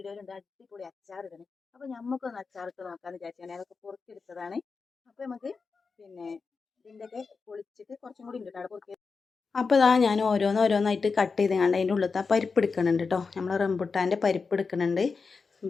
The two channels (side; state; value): right; quieter; 4.8 dB